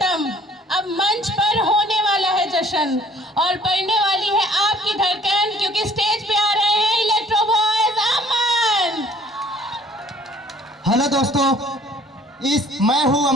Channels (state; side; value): normal; both; correlation 0.56